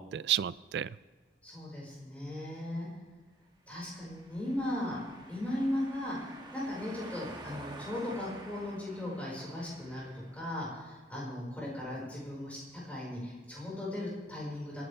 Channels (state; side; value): normal; both; correlation 0.63